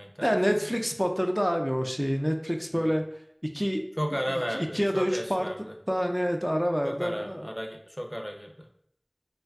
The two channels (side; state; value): both; identical; correlation 1.00